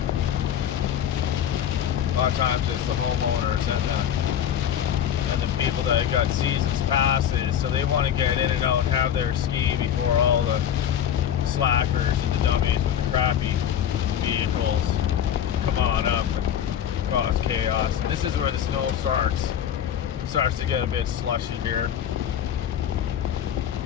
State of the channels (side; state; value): right; quieter; 9.6 dB